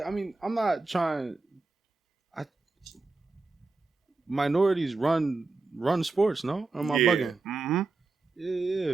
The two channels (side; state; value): left; quieter; 3.6 dB